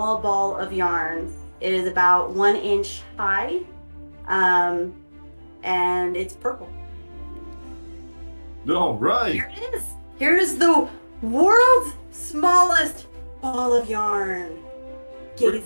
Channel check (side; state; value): both; inverted; correlation -1.00